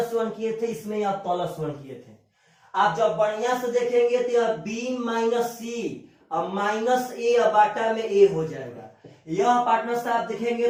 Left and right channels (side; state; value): both; identical; correlation 1.00